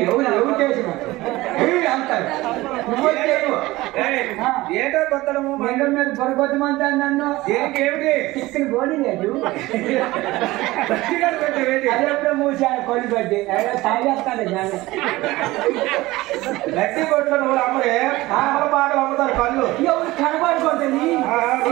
ఎవరు చేసిన అంటారు ఏంటో కొత్తడము లింగం మీద పొరగొట్టమంతా నన్ను ఏమిటి చిక్కని బోడి లేదు అదెప్పుడు మూసాను కొలి పట్టి తాగేస్తాను గట్టి కొట్ల నువ్వు అమ్మడే పాటలు అమ్ముతారు కళ్ళు ఎవరు కనబడుకుంటుంది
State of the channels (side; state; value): left; quieter; 19.0 dB